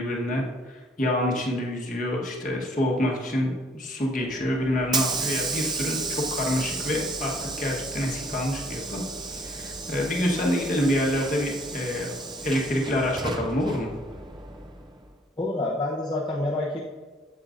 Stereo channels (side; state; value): both; normal; correlation 0.61